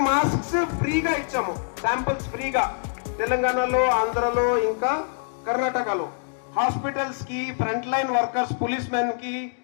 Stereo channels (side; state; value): right; silent; digital silence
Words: మాస్క్స్ ఫ్రీగా ఇచ్చాము, శాంపుల్స్ ఫ్రీగా, తెలంగాణలో, ఆంధ్రలో, ఇంకా కర్ణాటకలో. హాస్పిటల్స్ కి, front line workers, police men కి,